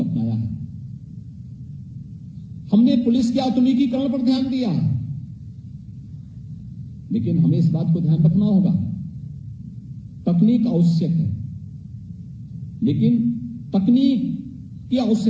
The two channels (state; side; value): identical; both; correlation 1.00